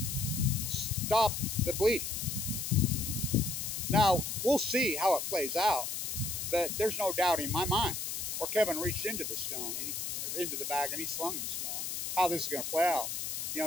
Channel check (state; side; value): noise; left; hiss, 3 dB below the sound